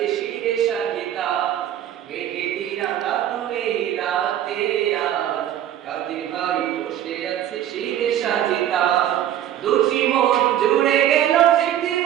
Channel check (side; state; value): left; quieter; 11.3 dB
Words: শিরে সাহিতা। মেঘেটি রাঙানো এই রাতে আজ কাদের ভাই বসে আছে শিরে সাহিতা। দুটি মন জুড়ে গেল স্মৃতি